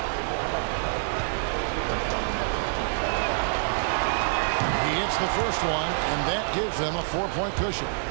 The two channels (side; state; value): left; silent; 60 dB below the other